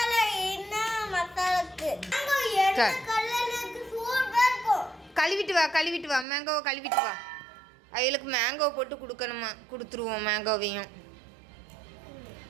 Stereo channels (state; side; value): drops out; left; at 6.2 s